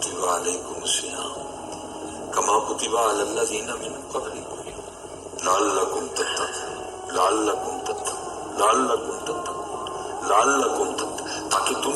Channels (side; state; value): both; identical; correlation 1.00